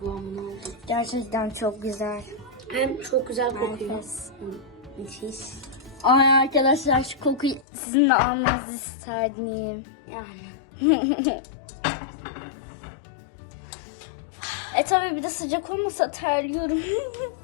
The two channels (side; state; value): right; drops out; at 7.7 s